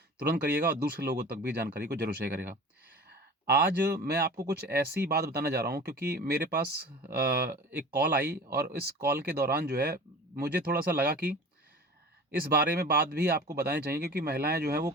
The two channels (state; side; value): normal; both; correlation 0.38